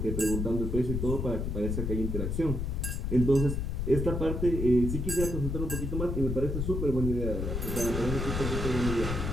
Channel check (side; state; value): left; noise; rumble, 2 dB below the sound